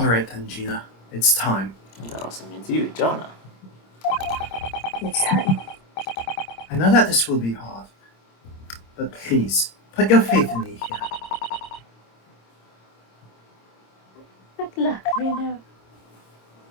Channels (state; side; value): late; right; 26 ms